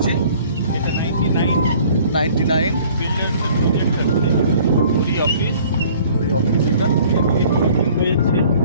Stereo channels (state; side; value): inverted; both; correlation -0.53